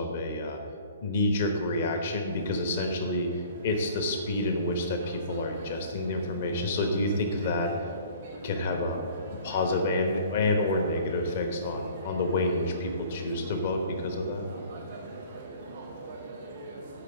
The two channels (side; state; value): both; inverted; correlation -0.49